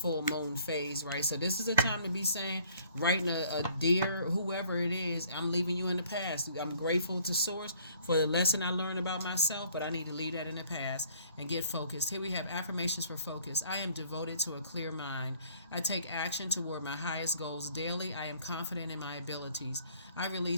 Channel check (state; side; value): inverted; both; correlation -0.59